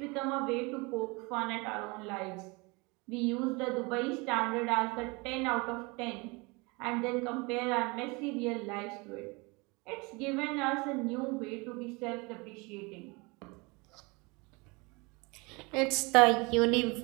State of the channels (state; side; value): quieter; left; 27.0 dB